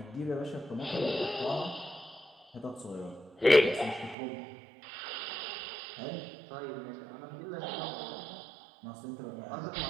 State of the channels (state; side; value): drops out; left; at 4.2 s